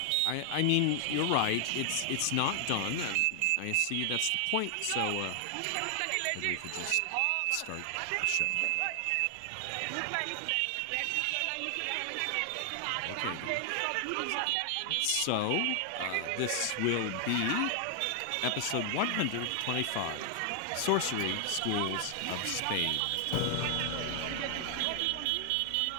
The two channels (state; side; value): different; both; correlation 0.00